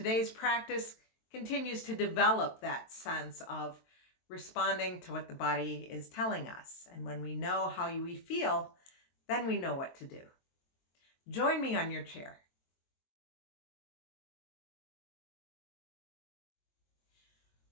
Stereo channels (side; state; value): right; late; 22 ms